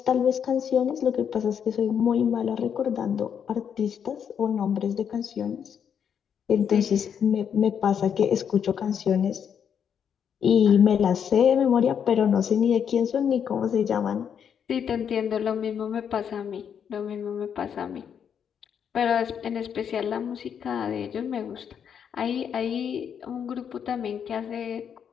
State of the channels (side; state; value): right; quieter; 7.9 dB